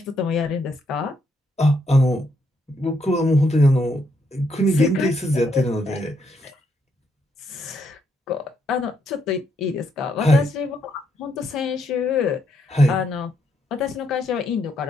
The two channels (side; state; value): both; normal; correlation 0.75